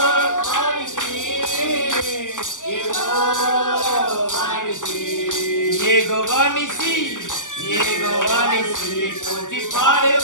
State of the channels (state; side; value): late; right; 0.87 ms